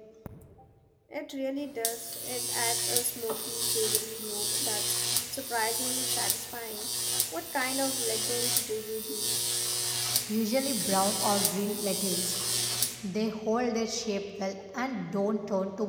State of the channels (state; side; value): identical; both; correlation 1.00